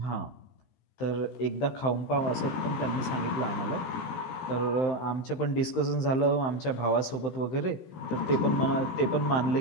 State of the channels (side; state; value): right; late; 15 ms